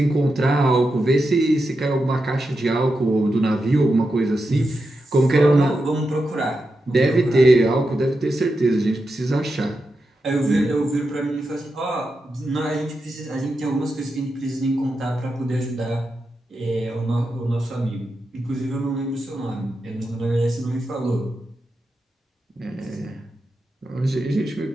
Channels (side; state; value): both; normal; correlation 0.88